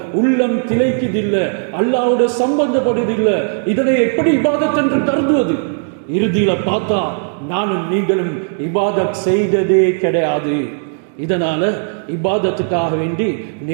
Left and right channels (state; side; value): silent; left; digital silence